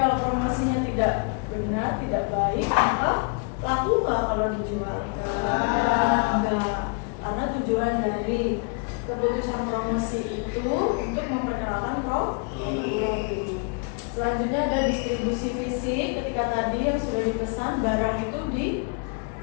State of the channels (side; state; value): right; quieter; 35.9 dB